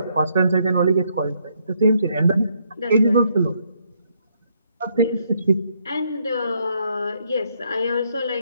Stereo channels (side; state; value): both; inverted; correlation -0.73